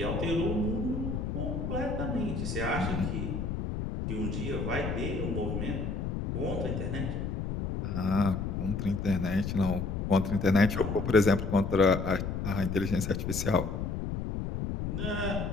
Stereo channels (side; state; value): left; noise; rumble, 3 dB below the sound